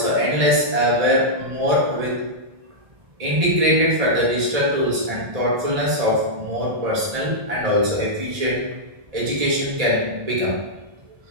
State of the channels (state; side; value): late; left; 1.8 ms